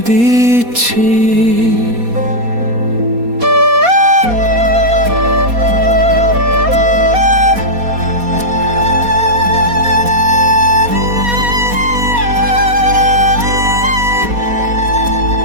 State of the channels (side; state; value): left; late; 4.2 ms